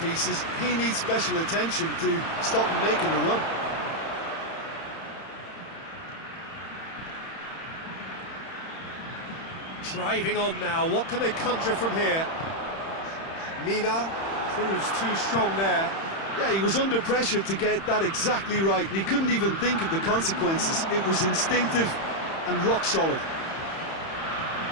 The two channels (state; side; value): late; right; 31 ms